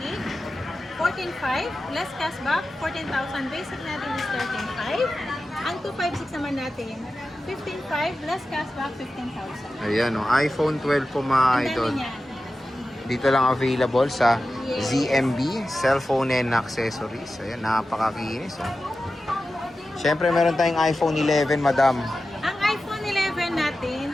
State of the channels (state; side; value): normal; both; correlation 0.93